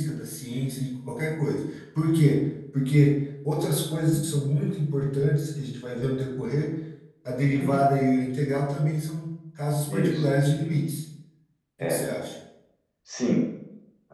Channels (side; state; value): both; identical; correlation 1.00